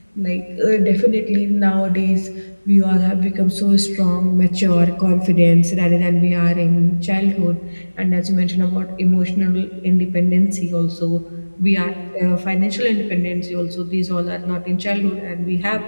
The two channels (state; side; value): inverted; both; correlation -1.00